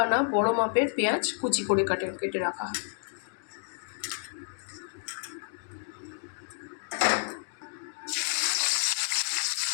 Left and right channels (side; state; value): right; silent; digital silence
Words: বড় মাপের পেঁয়াজ কুচি করে কেটে রাখা।